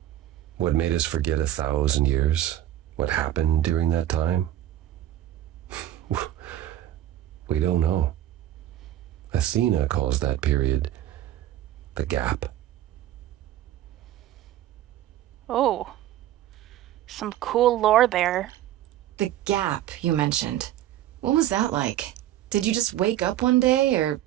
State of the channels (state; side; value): quieter; left; 12.9 dB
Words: What made us forget 1,000 years? What happened during that time? We don't know. Athena calls that period the gap. Oh, some cool lore there. The gap you mentioned. What was that like? Did you just wake up one day, or...